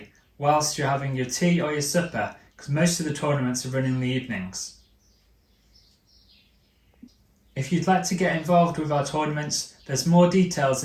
whilst you're having your tea or your supper, because most of the tournaments are run in the evenings. If you'd like to get involved with our tournaments, there's more details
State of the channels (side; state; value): both; identical; correlation 1.00